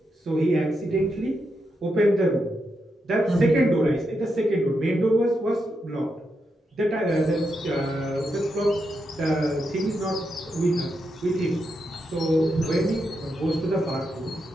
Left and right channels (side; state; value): both; normal; correlation 0.84